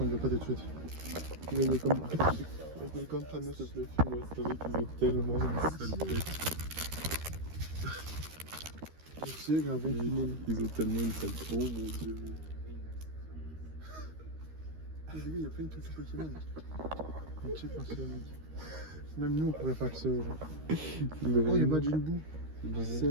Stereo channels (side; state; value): left; late; 13 ms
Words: ne veut pas tout de suite. Il y a comme beaucoup de trucs. Welcome to nous. S'il te plaît, filme-moi, c'est vrai qu'ils ont tellement une sale tête. Merci, gravé. Ils ont tellement une sale tête. Oh mon dieu. Les gars, il y a plein de trucs Pokémon. On check ça, mec. Même nous, on pourrait faire que ça. Genre. Oh, il y a Majin Buu.